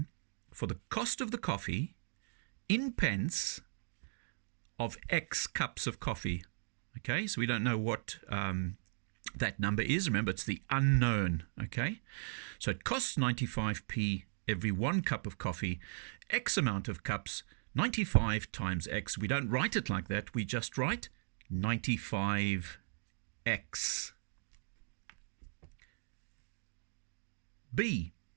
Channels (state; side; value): silent; left; digital silence